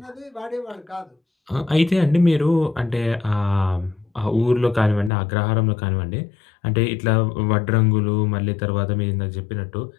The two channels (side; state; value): right; drops out; at 5.1 s